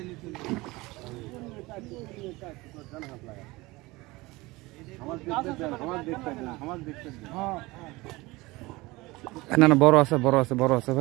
না না বড় আছে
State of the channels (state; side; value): quieter; left; 21.6 dB